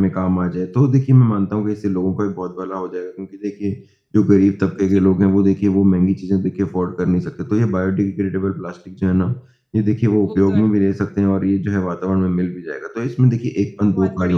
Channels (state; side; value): identical; both; correlation 1.00